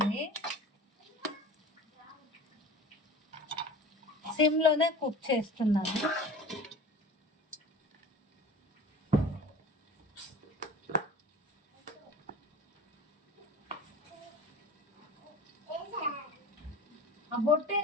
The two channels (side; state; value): both; normal; correlation 0.38